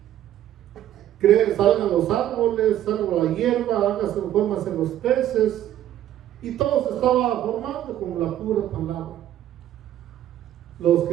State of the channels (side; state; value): left; quieter; 12.1 dB